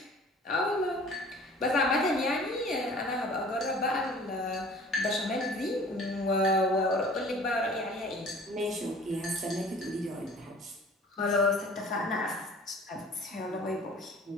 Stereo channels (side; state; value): both; normal; correlation 0.47